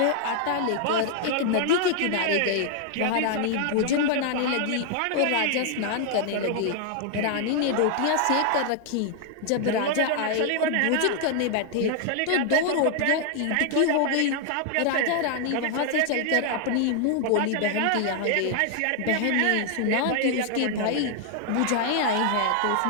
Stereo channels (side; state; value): both; different; correlation 0.00